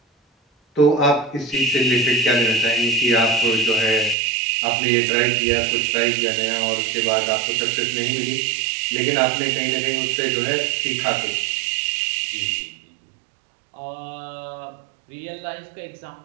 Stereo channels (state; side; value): drops out; left; at 4.2 s